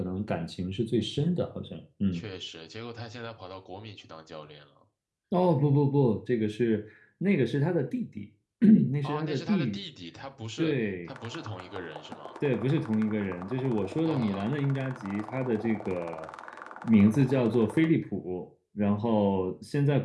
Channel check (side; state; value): both; identical; correlation 1.00